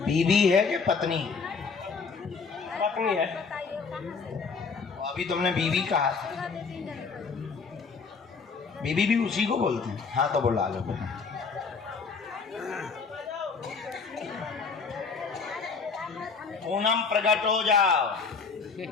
है कि पत्नी है? पत्नी है। अभी तुमने बीवी कहा था, बीवी भी उसी को बोलते हैं। हाँ तो बुला लो। पूनम प्रकट हो जाओ।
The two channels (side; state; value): right; quieter; 5.1 dB